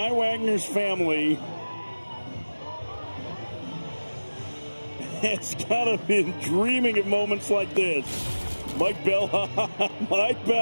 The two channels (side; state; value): both; inverted; correlation -1.00